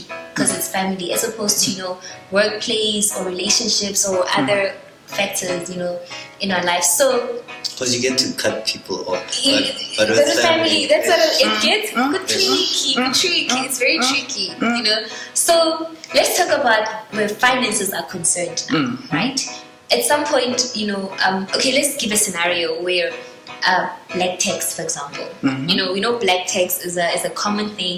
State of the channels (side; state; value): both; identical; correlation 1.00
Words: because it's family, as opposed to, workplace or relationships or other factors, in our life. So, because you get to cut people off. But with family, that's what it gets tricky. It's very tricky, So let's talk about where finances are concerned now, right? At some point, okay, let's give a scenario where black tax, for example. We know black tax is a common